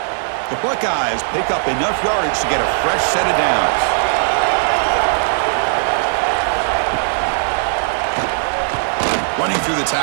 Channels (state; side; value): silent; left; digital silence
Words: The Buckeyes pick up enough yardage to get a fresh set of downs. Running through the